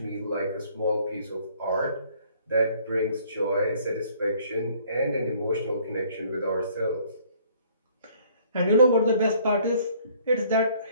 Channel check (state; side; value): inverted; both; correlation -0.59